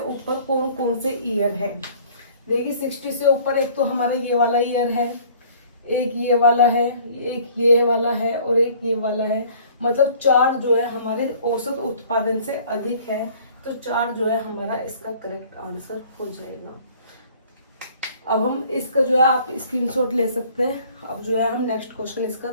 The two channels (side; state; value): both; inverted; correlation -0.53